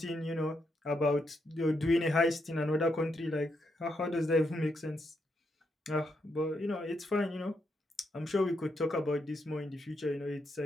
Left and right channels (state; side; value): normal; both; correlation 0.80